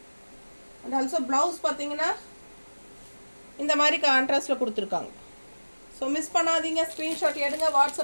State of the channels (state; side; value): inverted; both; correlation -1.00